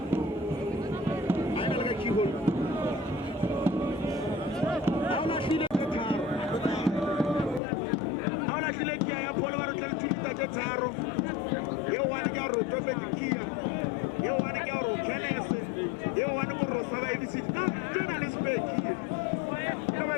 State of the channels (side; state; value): right; drops out; at 7.6 s